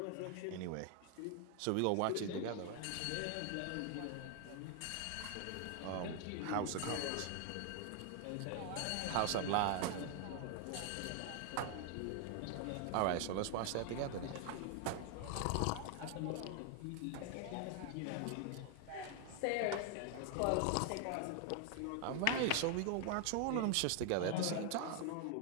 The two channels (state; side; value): different; both; correlation 0.00